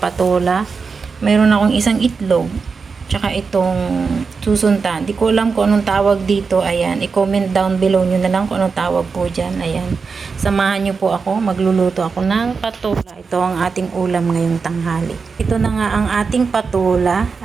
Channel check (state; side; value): quieter; left; 5.0 dB